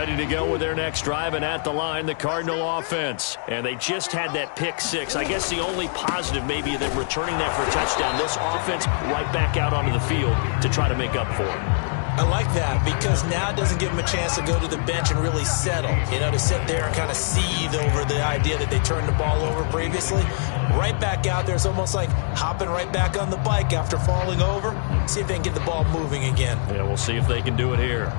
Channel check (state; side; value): silent; right; digital silence